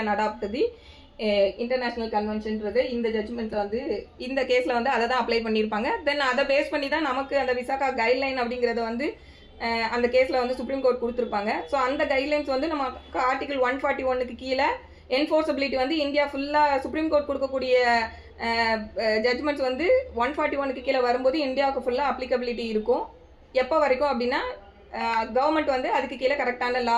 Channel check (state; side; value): identical; both; correlation 1.00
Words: adopt the international கன்வென்ஷன்றது இந்த ஜட்மெண்ட் வந்து இந்த கேஸ்ல வந்து அதை தான் அப்ளை பண்ணியிருப்பாங்க. தென் அதை பேஸ் பண்ணி தான் நமக்கு அந்த விசாகா கைட்லைன் அப்படிங்கறத வந்து அந்த கேஸ்ல வந்து சுப்ரீம் கோர்ட் கொடுத்துருப்பாங்க. ஸோ அந்த கைட்லைன்ஸ் வந்து நம்ம ஆர்டிகல் 141க்கு கீழே என்ஃபோர்ஸபிலிட்டி வந்து இந்தியா ஃபுல்லா சுப்ரீம் கோர்ட் கொடுக்கக்கூடிய ஜட்மெண்ட்ஸ் வந்து 141க்கு கீழே வரும்போது இந்தியாவுக்கு ஃபுல்லா அப்ளிகபிலிட்டி இருக்கும். எப்போ வரைக்கும் அப்படின்னா கவர்மெண்ட் வந்து அதுக்கு கீழே கரெக்டான